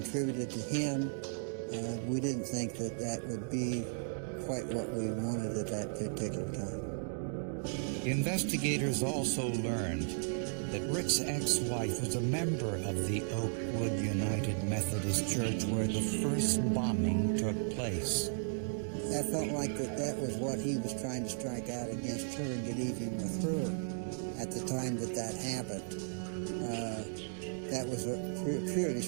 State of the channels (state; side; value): silent; left; digital silence